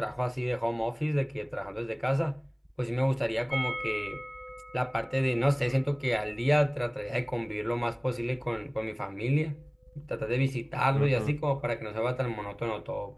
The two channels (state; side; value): identical; both; correlation 1.00